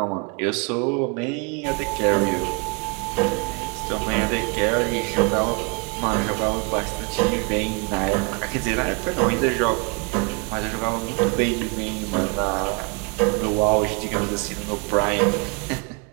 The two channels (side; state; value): left; quieter; 32.1 dB